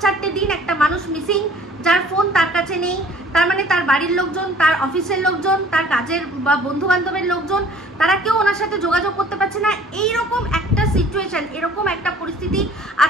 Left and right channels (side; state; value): both; normal; correlation 0.53